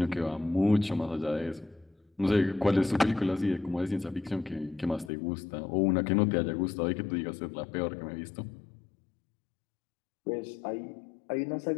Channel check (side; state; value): right; drops out; at 5.1 s